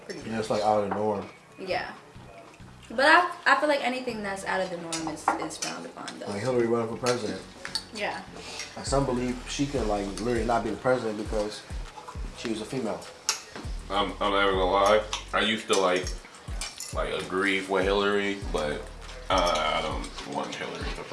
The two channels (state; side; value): identical; both; correlation 1.00